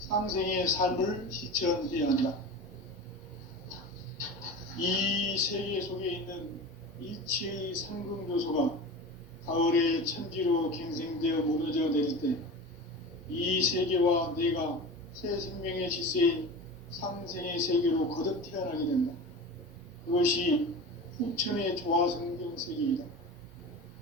삶을 실천해야 한다. 이 세계 속에 있는 일체의 상승교소가 가을의 천지로 갱생되어 무너져 내릴 때 이 세계와 내가 새 생명의 질서인 상생의 세계로 거듭 태어나게 된다. 그것이 후천의 조화성경 세계이다.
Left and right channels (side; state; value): both; normal; correlation 0.31